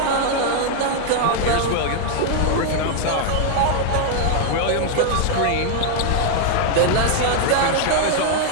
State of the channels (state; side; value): different; both; correlation 0.00